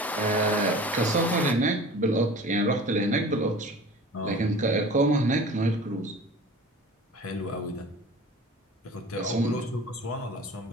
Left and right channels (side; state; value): both; normal; correlation 0.41